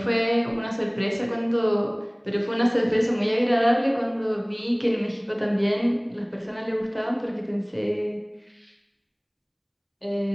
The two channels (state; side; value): identical; both; correlation 1.00